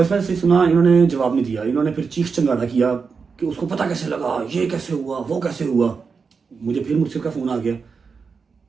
मैसेज सुना, इन्होंने जवाब नहीं दिया, इन्होंने फिर चीख चंगाड़ा किया कि उसको पता कैसे लगा, ये कैसे हुआ, वो कैसे हुआ। मुझे फिर मुझसे का फोन आ गया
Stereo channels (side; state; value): left; quieter; 5.3 dB